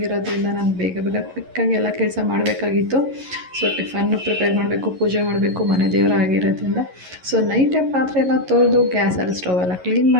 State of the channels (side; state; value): left; late; 11 ms